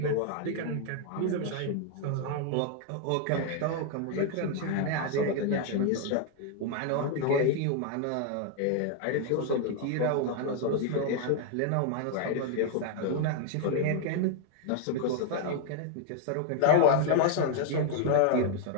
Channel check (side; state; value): both; different; correlation 0.00